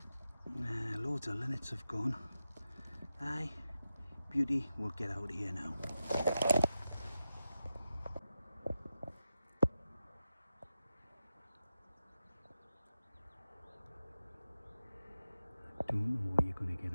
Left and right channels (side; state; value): both; inverted; correlation -0.91